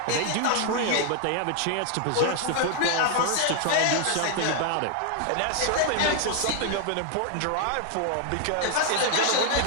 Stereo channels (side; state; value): both; different; correlation 0.00